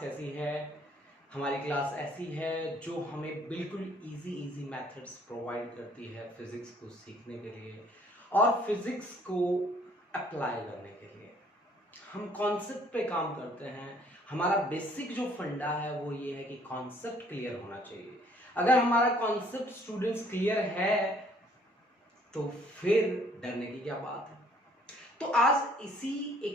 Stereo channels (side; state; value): both; normal; correlation 0.61